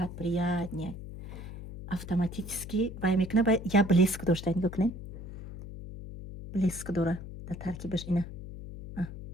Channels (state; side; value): noise; left; hum, 10 dB below the sound